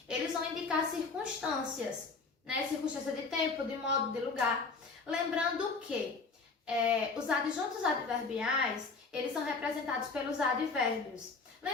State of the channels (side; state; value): right; quieter; 4.3 dB